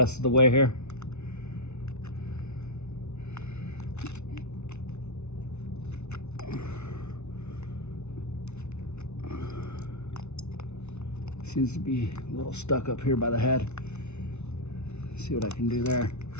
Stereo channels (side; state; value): right; late; 0.81 ms